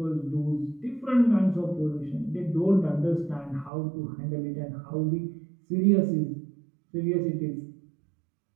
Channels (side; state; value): left; drops out; at 3.7 s